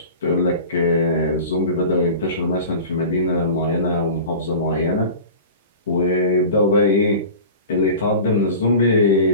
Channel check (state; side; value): inverted; both; correlation -0.37